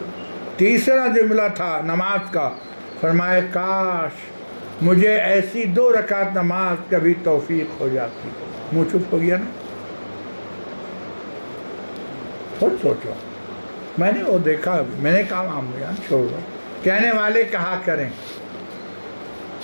تیسرا جملہ تھا نماز کا، فرمائے کاش مجھے ایسی 2 رکعت نماز کبھی توفیق ہو جاتی. منہ چپ ہو گیا نا. خود سوچو. میں نے وہ دیکھا، میں نے کہا بیان چھوڑو. کہنے والے کہا کریں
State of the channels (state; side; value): inverted; both; correlation -1.00